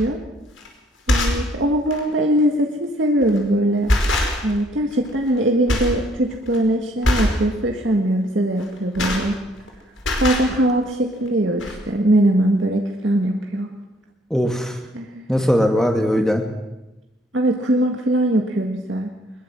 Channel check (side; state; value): both; normal; correlation 0.64